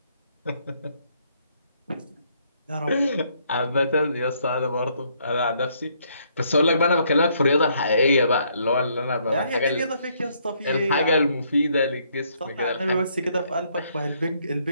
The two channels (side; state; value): both; inverted; correlation -0.70